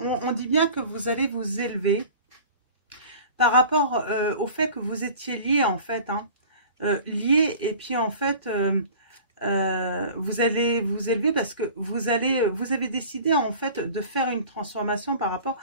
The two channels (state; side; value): inverted; both; correlation -0.42